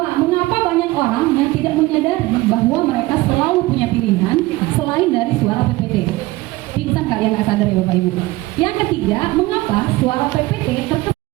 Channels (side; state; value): left; quieter; 19.5 dB